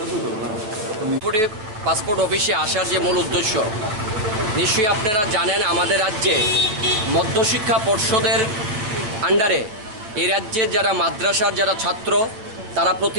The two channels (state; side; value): late; left; 9.2 ms